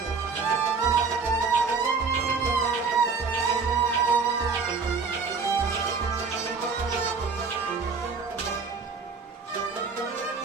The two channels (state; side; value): quieter; left; 4.9 dB